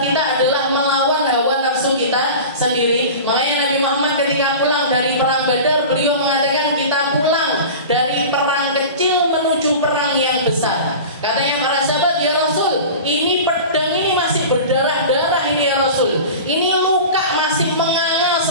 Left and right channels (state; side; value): inverted; both; correlation -0.34